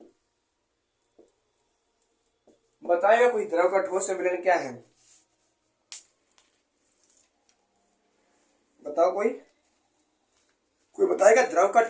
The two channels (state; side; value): identical; both; correlation 1.00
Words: बताएगा कोई द्रव का ठोस में विलयन क्या है? बताओ कोई बताएगा द्रव का